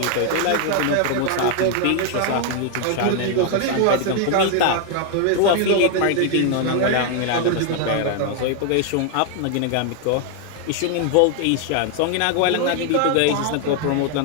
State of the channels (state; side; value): different; both; correlation 0.00